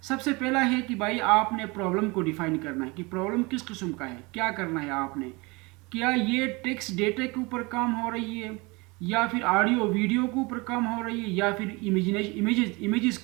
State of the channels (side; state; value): left; quieter; 26.0 dB